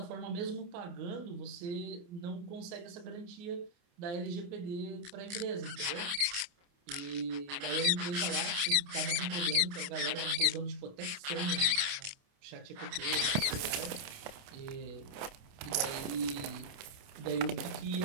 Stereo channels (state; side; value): late; left; 28 ms